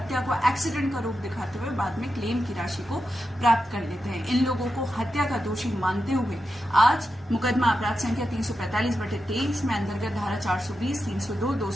को एक्सीडेंट का रूप दिखाते हुए बाद में क्लेम की राशि को प्राप्त कर लेते हैं। इन लोगों को हत्या का दोषी मानते हुए आज मुकदमा अपराध संख्या 345/23 में अंतर्गत धारा 420, 302,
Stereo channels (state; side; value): normal; both; correlation 0.89